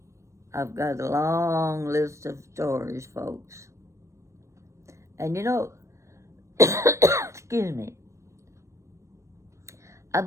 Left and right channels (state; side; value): late; left; 0.15 ms